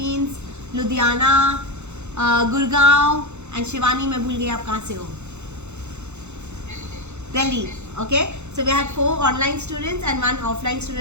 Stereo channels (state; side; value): late; left; 0.82 ms